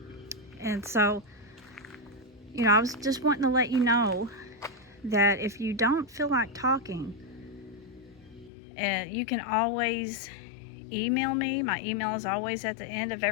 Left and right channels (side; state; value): right; drops out; at 8.5 s